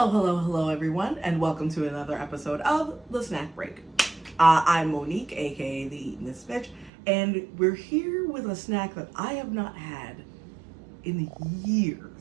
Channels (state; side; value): drops out; left; at 6.9 s